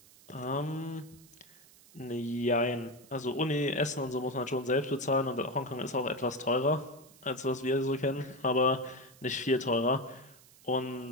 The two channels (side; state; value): right; noise; hiss, 24 dB below the sound